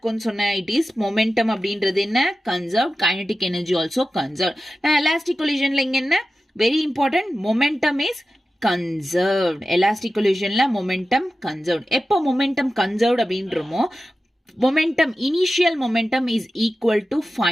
சொன்னேன்? இட் இஸ் மொமெண்டம் அப்படின்றது என்ன? Conserve. Kinetic energy also conserve. நான் எலாஸ்டிக் கொலிஷன்ல இங்க என்ன very important? Momentum is conserved. Elastic கொலிஷன்ல மொமெண்டம் கன்சர்வ்ட். எப்போ மொமெண்டம் கன்சர்வ்ட் அப்படின்றமோ, momentum, initial momentum is equal to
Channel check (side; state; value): both; normal; correlation 0.93